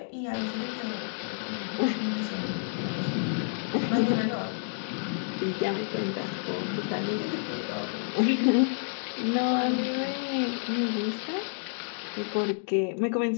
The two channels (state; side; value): silent; right; digital silence